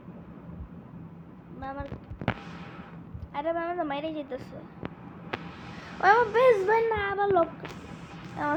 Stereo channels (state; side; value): identical; both; correlation 1.00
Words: আমার আরে ভাই আমার তো মাইরে যেতেছে। ও আমার বেশ ভাই না আবার লোক